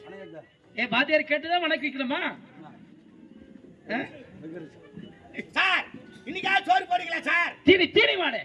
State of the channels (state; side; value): identical; both; correlation 1.00